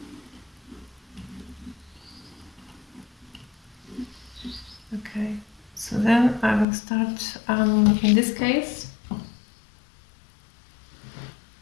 Okay, so then I will start, in this case,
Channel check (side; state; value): right; drops out; at 6.7 s